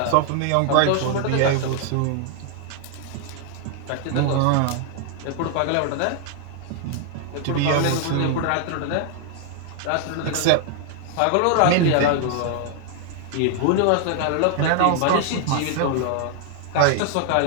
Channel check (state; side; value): different; both; correlation 0.00